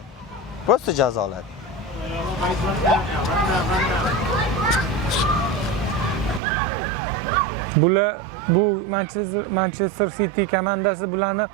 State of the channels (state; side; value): drops out; left; at 6.4 s